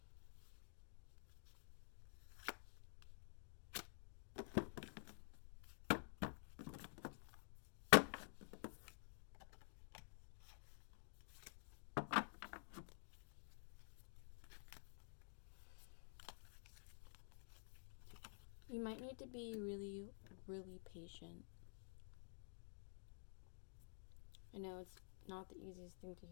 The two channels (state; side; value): silent; right; digital silence